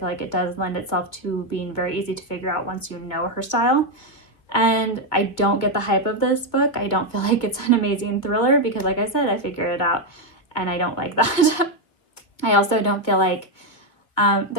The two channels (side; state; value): right; late; 2.0 ms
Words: like it does lend itself to being very easy to figure out once you know her style. And I don't get the hype of this book. I don't feel like it's an amazing thriller because, like I said, I figured it out and I don't like that. I also don't feel like